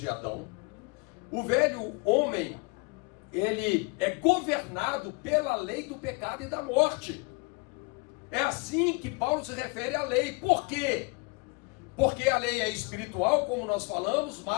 Adão. O velho homem, ele é governado pela lei do pecado e da morte. É assim que Paulo se refere à lei. Por quê? Porque a lei é espiritual, como nós falamos,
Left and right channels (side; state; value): right; quieter; 29.6 dB